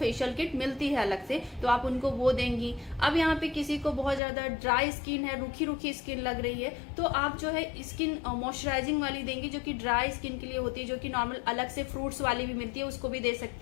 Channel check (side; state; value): right; drops out; at 4.2 s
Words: किट मिलती है अलग से, तो आप उनको वो देंगी। अब यहाँ पे किसी को बहुत ज्यादा ड्राई स्किन है, रूखी रूखी स्किन लग रही है, तो आप जो है स्किन मॉइस्चराइजिंग वाली देंगी जो कि ड्राई स्किन के लिए होती है, जो कि नॉर्मल अलग से फ्रूट्स वाली भी मिलती है, उसको भी दे